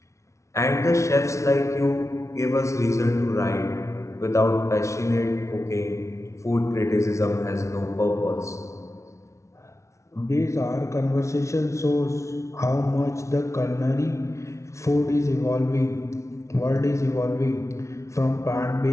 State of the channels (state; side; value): late; right; 0.14 ms